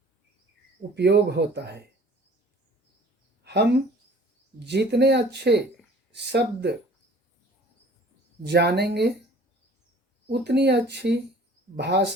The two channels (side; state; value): both; normal; correlation 0.50